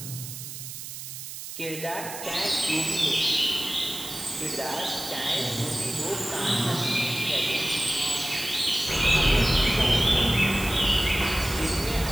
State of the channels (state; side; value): noise; right; hiss, 10 dB below the sound